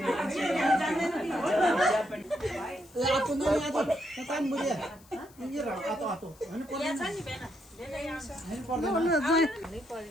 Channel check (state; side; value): noise; left; hiss, 26 dB below the sound